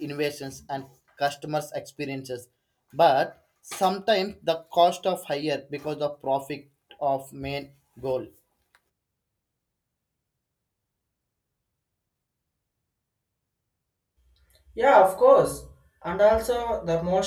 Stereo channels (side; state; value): both; identical; correlation 1.00